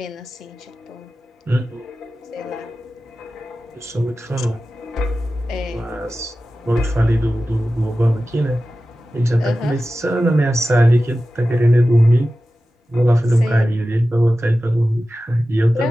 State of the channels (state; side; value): normal; both; correlation 0.94